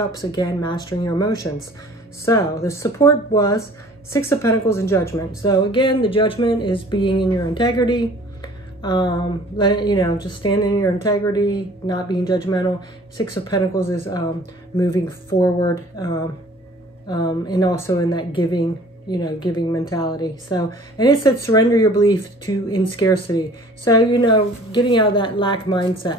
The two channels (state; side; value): normal; both; correlation 0.50